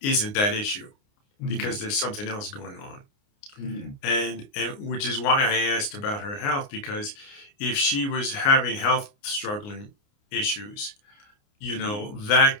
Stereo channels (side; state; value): right; late; 29 ms